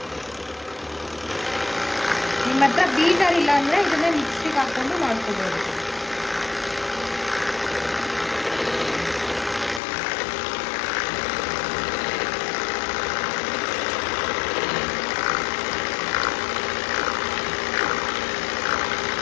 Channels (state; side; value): drops out; right; at 9.8 s